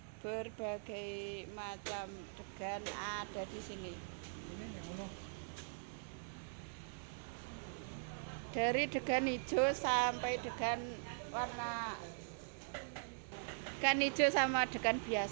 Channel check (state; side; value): silent; left; digital silence